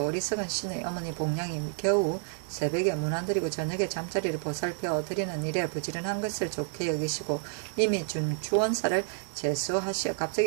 어리석은 신의 어머니 복량이 겨우 새벽에 문안드리고 저녁에 잠자리를 보살펴 드리는 일에 부지런한 것을 좋게 여기시고 이미 준 주원사를 제수하시어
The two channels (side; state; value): left; silent; 58 dB below the other